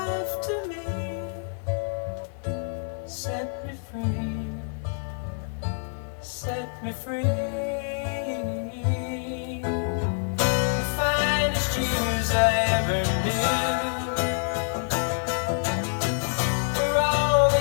to me, set me free, set me free. The finest years I ever knew, for all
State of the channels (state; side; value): silent; right; 59 dB below the other